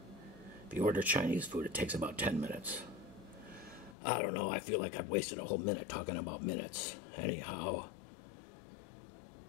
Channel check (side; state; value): right; drops out; at 4.0 s